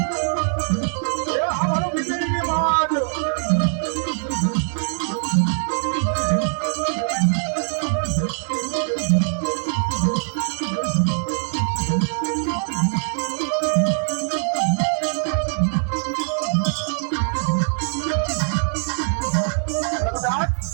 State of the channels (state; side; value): silent; left; 57 dB below the other